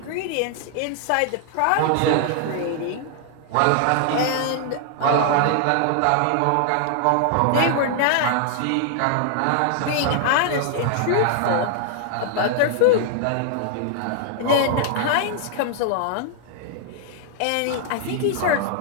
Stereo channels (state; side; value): different; both; correlation 0.00